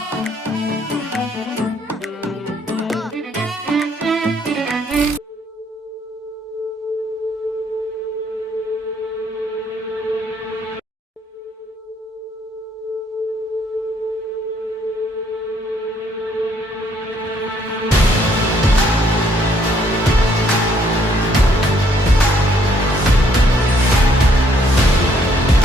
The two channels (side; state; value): both; normal; correlation 0.67